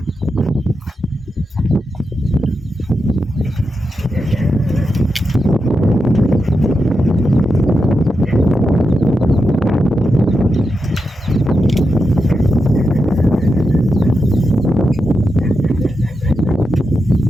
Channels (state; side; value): normal; both; correlation 0.87